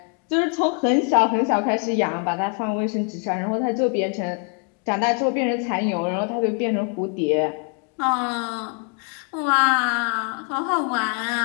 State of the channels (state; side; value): quieter; right; 37.6 dB